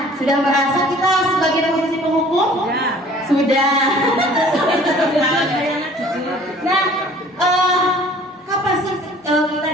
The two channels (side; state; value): both; normal; correlation 0.51